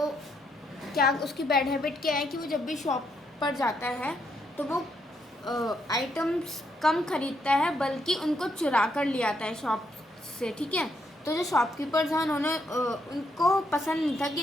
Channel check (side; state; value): both; normal; correlation 0.76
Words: क्या उसकी बैड हैबिट क्या है कि वो जब भी शॉप पर जाता है तो वो आइटम्स कम खरीदता है बल्कि उनको चुरा कर ले आता है शॉप से। ठीक है, तो जो शॉपकीपर्स हैं उन्होंने उनको पसंद नहीं था